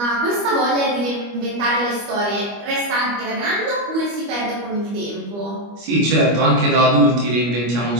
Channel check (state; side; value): late; left; 25 ms